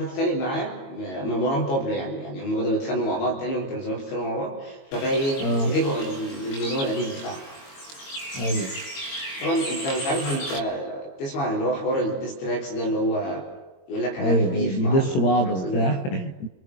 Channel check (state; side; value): late; right; 22 ms